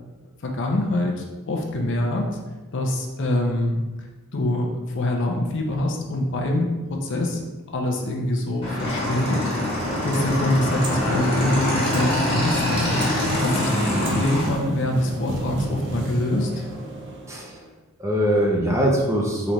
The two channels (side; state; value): both; normal; correlation 0.61